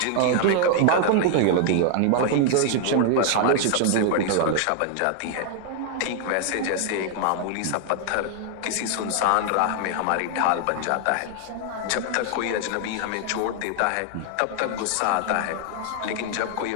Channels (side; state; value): both; different; correlation 0.00